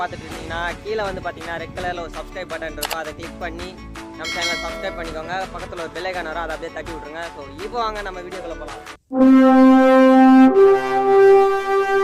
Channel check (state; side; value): identical; both; correlation 1.00